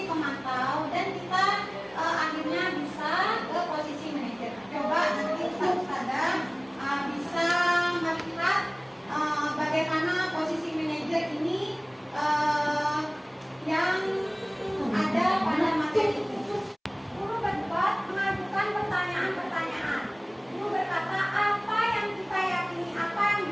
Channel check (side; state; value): both; identical; correlation 1.00